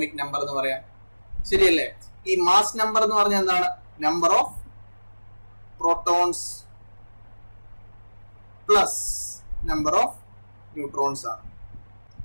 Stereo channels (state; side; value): inverted; both; correlation -1.00